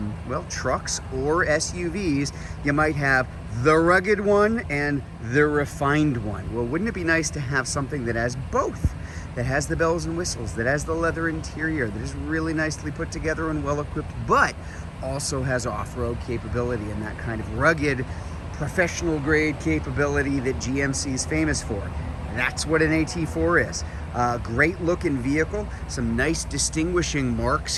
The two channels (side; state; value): both; identical; correlation 1.00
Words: well, trucks or SUVs, you might have the rugged one and the refined one. Well, wouldn't it be nice to have something that has both? That has the bells and whistles, that has the leather interior, that is really nicely put together and well equipped, but also has off-road capability and that kind of rugged, professional grade capability that GMC is famous for. That's what an AT4 is. Great looking vehicle, some nice distinguishing marks